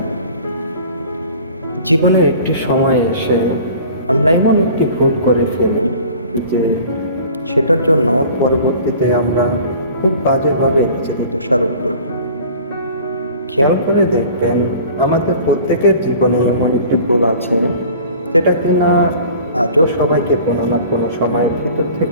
জীবনের একটি সময় এসে আমরা এমন একটি ভুল করে ফেলি যে সেটার জন্য পরবর্তীতে আমরা খুব বাজেভাবে নিজেদের দোষারোপ করি। খেয়াল করে দেখবেন, আমাদের প্রত্যেকের জীবনে এমন একটি ভুল আছে যেটা কিনা আজও সবাইকে কোনো না কোনো সময় ভিতর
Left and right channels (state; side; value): inverted; both; correlation -0.45